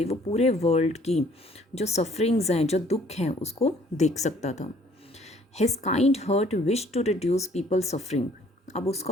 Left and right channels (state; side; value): normal; both; correlation 0.59